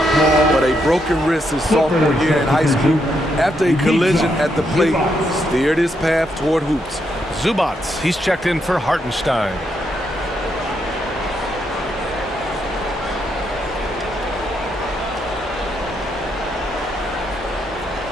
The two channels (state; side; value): normal; both; correlation 0.79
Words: but a broken wrist his sophomore year in high school after a collision at the plate steered his path toward hoops. Zubats, he's checked in for Hartenstein.